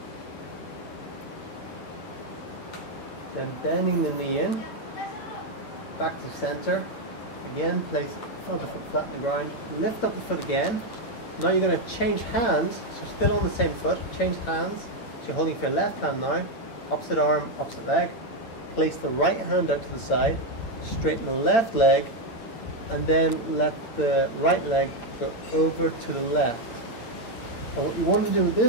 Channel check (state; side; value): late; right; 8.8 ms